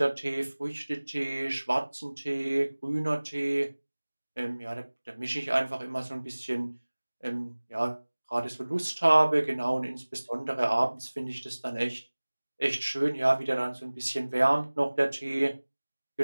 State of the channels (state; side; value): inverted; both; correlation -1.00